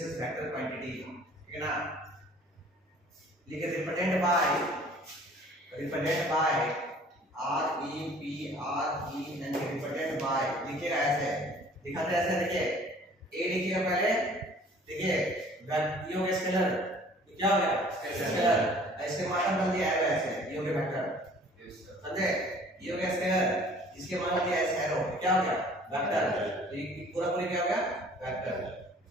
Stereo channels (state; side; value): normal; both; correlation 0.52